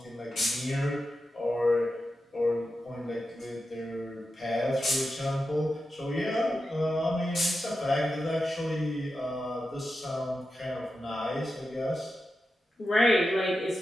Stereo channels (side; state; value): both; normal; correlation 0.90